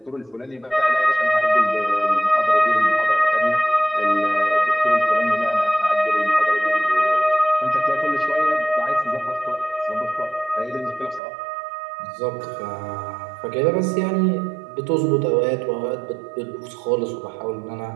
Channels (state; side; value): drops out; left; at 11.2 s